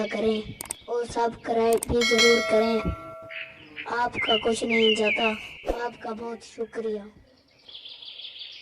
करें और सब्सक्राइब भी ज़रूर करें। आपका कुछ नहीं जाता, आपका बहुत शुक्रिया।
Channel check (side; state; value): both; identical; correlation 1.00